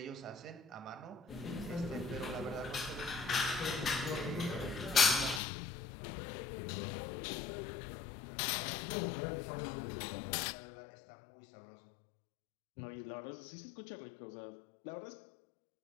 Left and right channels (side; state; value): right; drops out; at 5.4 s